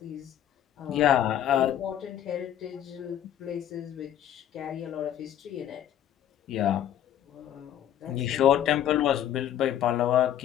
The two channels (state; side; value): quieter; right; 10.9 dB